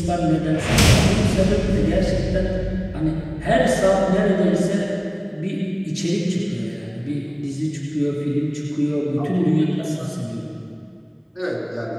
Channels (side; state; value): both; identical; correlation 1.00